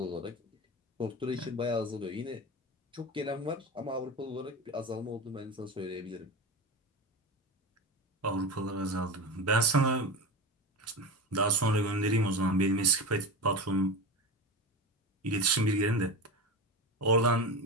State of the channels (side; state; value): both; normal; correlation 0.24